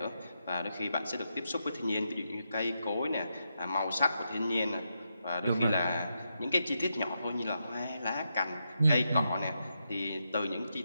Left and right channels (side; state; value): both; inverted; correlation -0.84